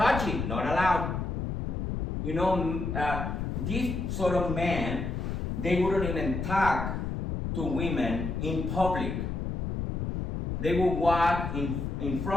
not allowed. You know, these sort of men, they wouldn't even talk to women in public. They would walk in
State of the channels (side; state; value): left; noise; rumble, 3 dB below the sound